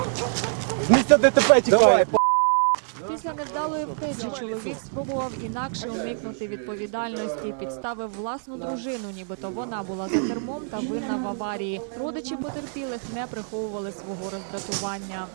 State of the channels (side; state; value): left; silent; digital silence